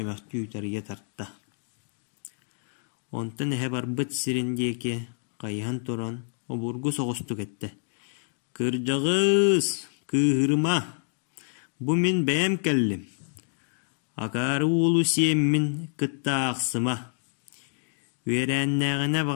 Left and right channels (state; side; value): silent; right; digital silence